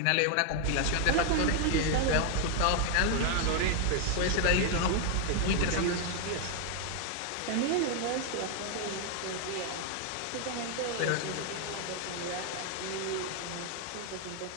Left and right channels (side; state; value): both; different; correlation 0.00